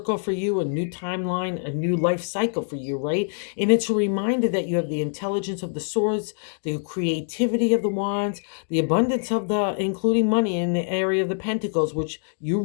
for you, a new timeline, a new life cycle for you, right? And it's a reminder that you have the intelligence of the swords, the creativity of the wands, the abundance of the, including money in the area of the pentacles, which you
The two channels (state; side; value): silent; right; 62 dB below the other